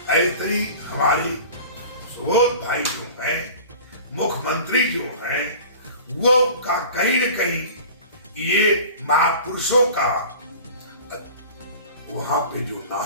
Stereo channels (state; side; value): inverted; both; correlation -0.40